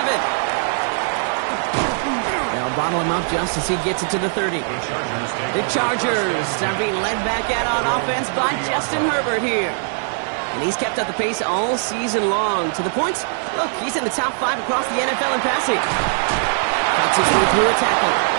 They'll bottle him up just as he gets it to the 30. The Chargers are being led back out on offense by Justin Herbert here. And he's kept up the pace all season long. To the point, look, he's in the top 5 across the NFL in passing. Cuts his way through a tackle.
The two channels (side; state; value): left; silent; digital silence